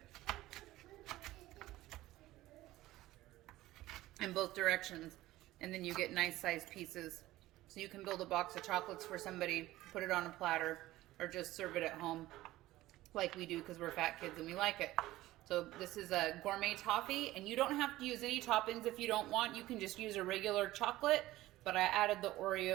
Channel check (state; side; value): quieter; left; 16.5 dB